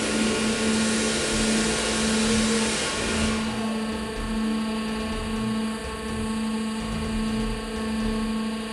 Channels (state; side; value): identical; both; correlation 1.00